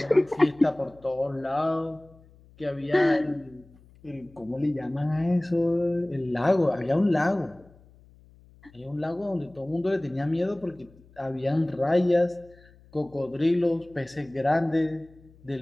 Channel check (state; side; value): noise; left; hum, 26 dB below the sound